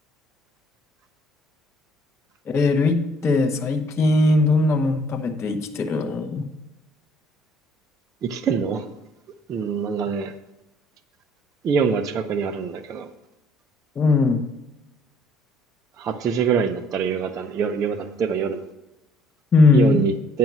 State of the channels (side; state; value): both; normal; correlation 0.62